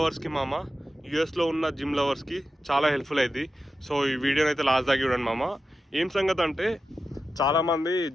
మామ, యూఎస్లో ఉన్న జిమ్ లవర్స్కి చాలా హెల్ప్ఫుల్ అయింది. సో ఈ వీడియోనైతే లాస్ట్ దాకా చూడండి మామ. ఏం సంగతి అంటే చాలామంది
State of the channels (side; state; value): both; normal; correlation 0.91